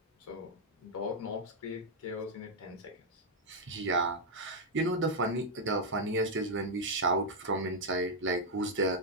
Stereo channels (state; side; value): normal; both; correlation -0.02